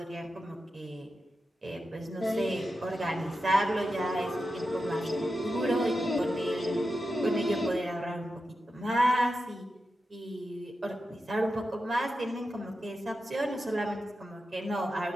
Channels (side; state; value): both; normal; correlation 0.90